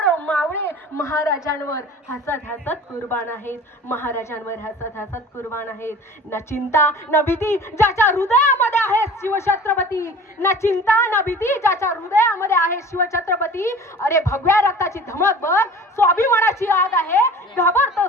मावळे महाराजांवर हसत हसत कुर्बान आहेत, महाराजांवर हसत हसत कुर्बान आहेत. न चिंता न भीती ज्याच्या हृदयामध्ये आहे शिवछत्रपती, न चिंता न भीती ज्याच्या हृदयामध्ये आहे शिवछत्रपती. अरे भगव्या रक्ताची धमक बघ, स्वाभिमानाची आग आहे,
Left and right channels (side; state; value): both; normal; correlation 0.42